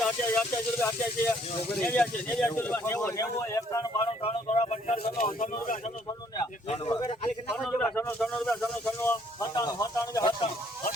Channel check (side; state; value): both; normal; correlation 0.65